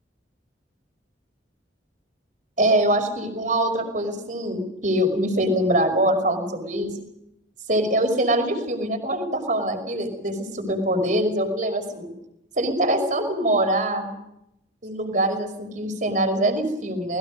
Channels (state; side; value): normal; both; correlation 0.11